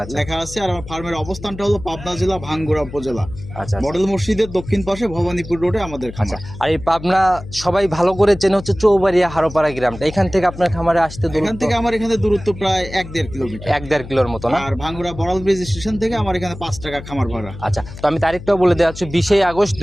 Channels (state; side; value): noise; left; hum, 13 dB below the sound